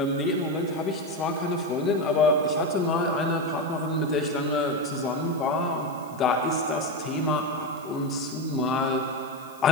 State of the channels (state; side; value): noise; left; hiss, 24 dB below the sound